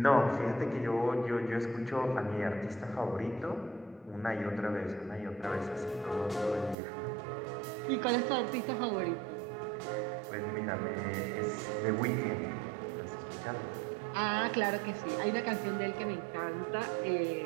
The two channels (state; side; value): drops out; left; at 6.8 s